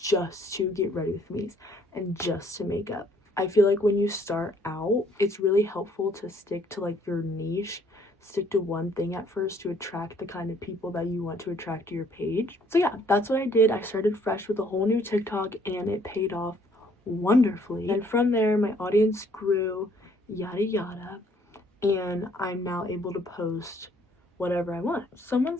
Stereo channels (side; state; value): both; normal; correlation 0.63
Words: just to get ready with me's and just to makeup. I feel like when you start out, it's really helpful to stick to like your niche, stick to one thing at first to attract the kind of people that you want to attract to your page. So yeah, that's what I did. I started fresh with a whole new TikTok and it paid off wonderfully. And from there, my audience grew, yada yada, and I'm now able to post whatever I want. Someone